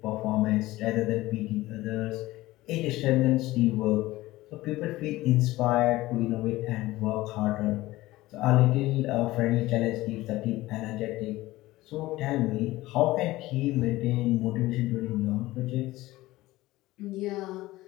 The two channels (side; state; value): right; quieter; 18.0 dB